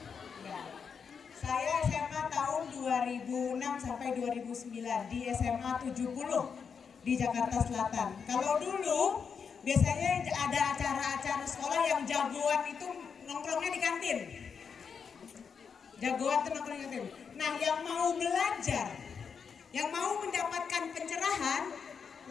Ya. Saya SMA tahun 2006 sampai 2009 di SMA 70 di Jakarta Selatan. Kalau dulu biasanya ada acara-acara sekolah yang jagoan itu nongkrongnya di kantin. Jagoan itu nongkrong di kantin. Nah, yang mau belajar, yang mau mendapatkan pencerahan,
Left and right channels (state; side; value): quieter; right; 6.3 dB